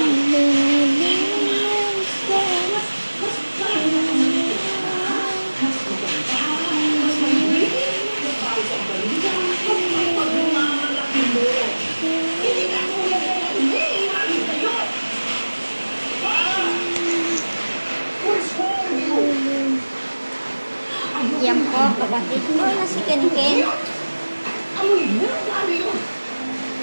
Yan po, kapatid ko na si Ken.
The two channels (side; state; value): both; inverted; correlation -1.00